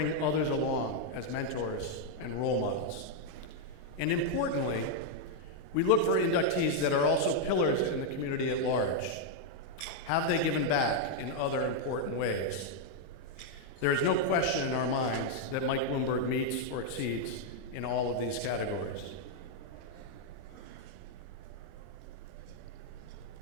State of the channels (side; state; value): right; late; 27 ms